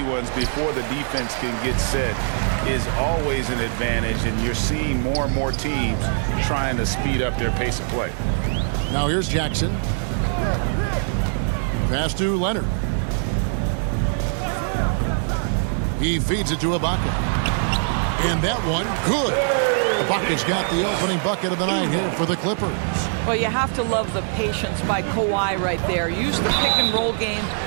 ones before the defense can get set is always an advantage, and you're seeing more and more teams trying to speed up their pace of play. Now here's Jackson. Pass to Leonard. He feeds it to Ibaka. And that one, good. Ibaka's got the opening bucket of the night here for the Clippers. Well, you have to love the patience by Kawhi right there. Use the pick-and-roll game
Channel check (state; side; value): silent; left; digital silence